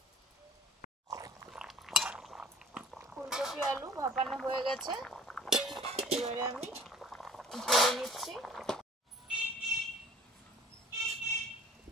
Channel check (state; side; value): normal; both; correlation 0.50